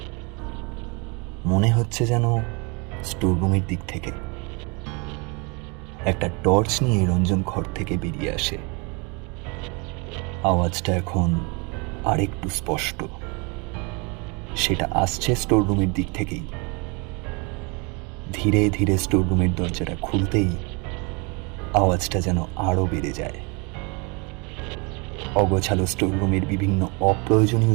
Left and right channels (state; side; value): quieter; left; 30.8 dB